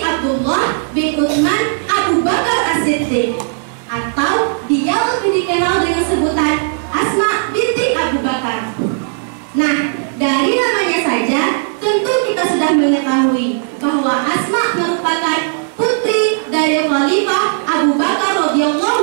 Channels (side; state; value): left; silent; digital silence